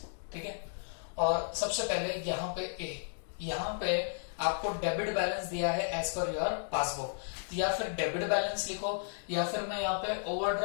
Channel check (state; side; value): silent; right; digital silence